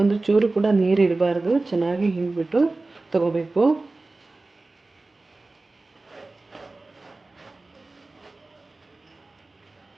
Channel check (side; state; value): left; quieter; 3.3 dB